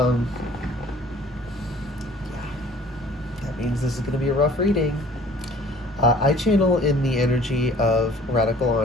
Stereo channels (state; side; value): normal; both; correlation 0.52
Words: that means this is going to be a rough reading. I channel in the energy of radical